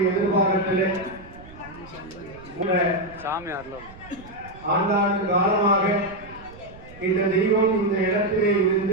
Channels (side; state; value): right; noise; rumble, 19 dB below the sound